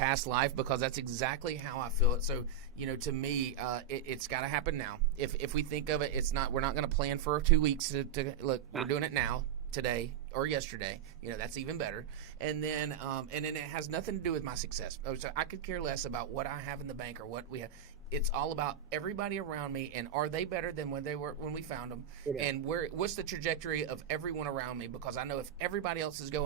life, because that's exactly how I feel it. So, to me, it's got to happen now. If we think of it, we're not going to plan for 2 weeks to look. We're doing it now, today or yesterday. That's even better. And then it has nothing to do with my success. So I could care less about what I have in the bank or what we have. It's all about everybody around me, and are they better than when we found them? Yeah. And what's the trajectory of everyone around me? Because I know if everybody else is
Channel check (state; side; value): quieter; left; 7.3 dB